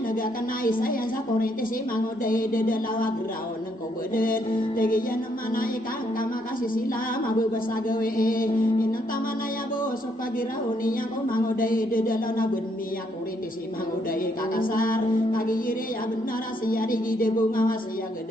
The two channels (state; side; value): normal; both; correlation 0.73